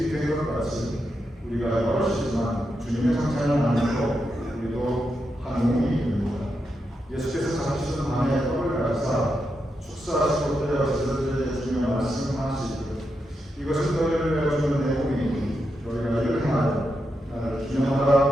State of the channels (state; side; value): normal; both; correlation 0.85